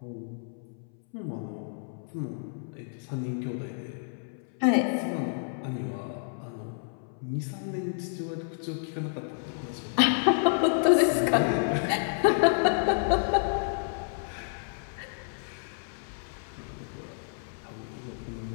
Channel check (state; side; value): silent; right; 58 dB below the other